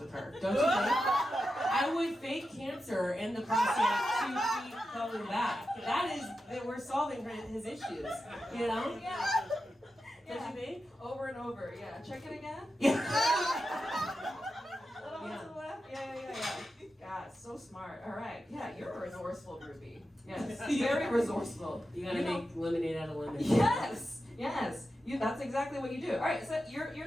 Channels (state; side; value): normal; both; correlation 0.90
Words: her. Don't you think? I would fake cancer in the prostate to keep coming back. That we're solving his issues, you know? Yeah. Don't you think? Over and over, yeah. Check it again. Yeah. Little one to the left. Yeah. God, so smart. All right. Yeah, you're resourceful, Ruby. Yes, very resourceful. You gotta make lemonade out of lemon. Yes. That's exactly what you do. All right, so